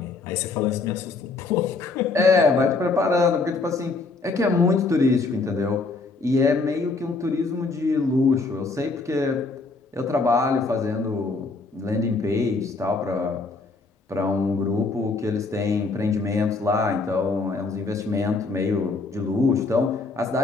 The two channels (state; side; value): quieter; right; 3.9 dB